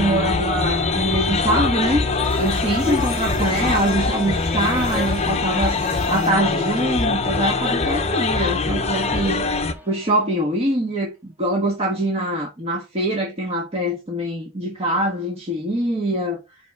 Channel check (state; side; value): normal; both; correlation 0.30